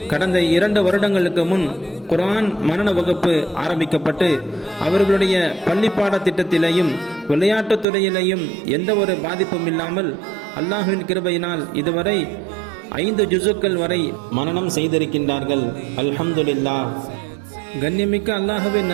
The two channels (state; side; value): drops out; left; at 7.9 s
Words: கடந்த 2 வருடங்களுக்கு முன் குர்ஆன் மனன வகுப்பு ஆரம்பிக்கப்பட்டு அவர்களுடைய பள்ளி பாடத்திட்டத்திலேயும் விளையாட்டுத் துறையிலேயும் எந்த ஒரு பாதிப்பும் இல்லாமல் அல்லாஹ்வின் கிருபையினால் இதுவரை 5 ஜுசுக்கள் வரை மனனம் செய்திருக்கின்றார்கள். அல்ஹம்துலில்லாஹ். கண்ணியமிக்க அல்லாஹ்வின்